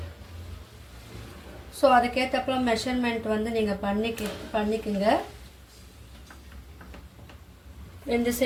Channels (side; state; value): both; identical; correlation 1.00